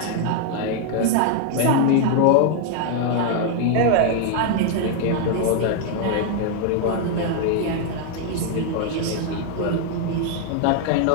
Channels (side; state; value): both; different; correlation 0.00